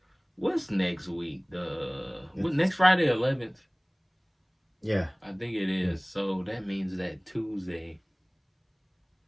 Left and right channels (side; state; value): both; identical; correlation 1.00